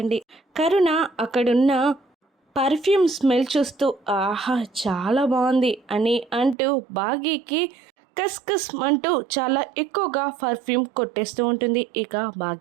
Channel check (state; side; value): drops out; left; at 6.6 s